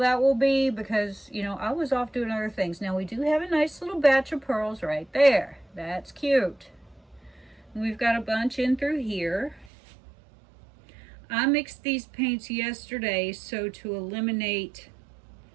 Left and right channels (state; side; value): drops out; left; at 9.7 s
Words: will be because, you know, I was off doing other things. Now we do have a nice little batch of pearls right there. That's cute. We've got a bunch in through here. I mixed these paints yesterday so to eliminate,